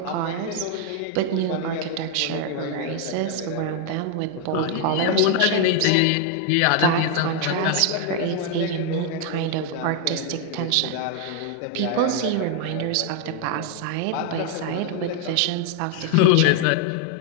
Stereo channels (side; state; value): both; different; correlation 0.01